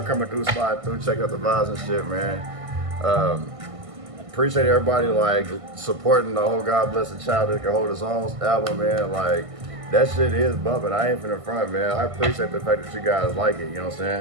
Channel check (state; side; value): late; left; 1.5 ms